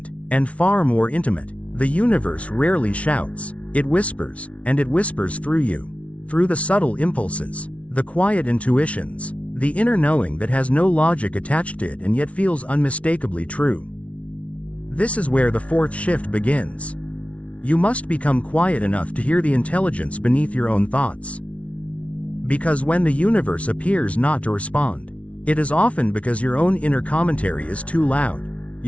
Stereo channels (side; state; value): right; late; 0.064 ms